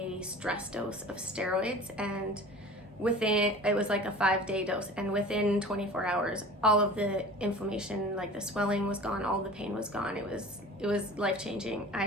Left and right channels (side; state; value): both; normal; correlation 0.40